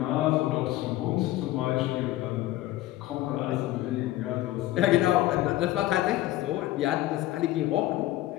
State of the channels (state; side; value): quieter; right; 15.6 dB